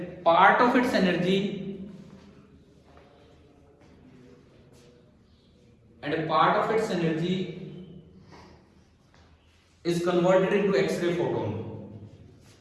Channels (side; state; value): both; identical; correlation 1.00